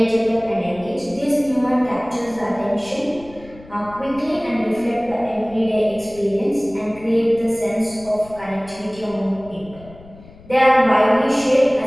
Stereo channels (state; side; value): noise; left; rumble, 21 dB below the sound